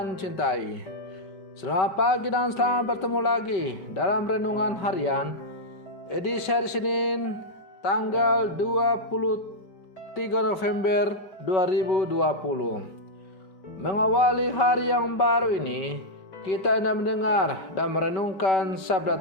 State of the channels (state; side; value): late; right; 5.2 ms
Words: cintai, selamat pagi dan selamat bertemu lagi dalam Renungan Harian edisi hari Senin tanggal 23 November 2020. Mengawali hari yang baru ini, kita hendak mendengar dan merenungkan sabda